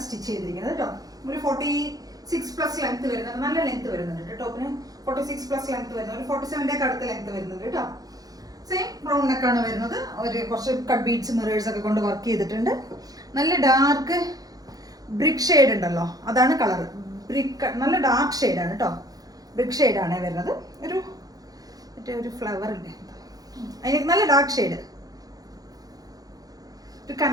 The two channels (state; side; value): late; left; 0.18 ms